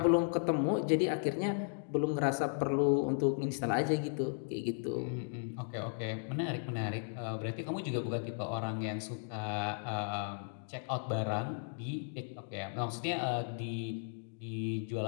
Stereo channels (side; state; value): right; silent; digital silence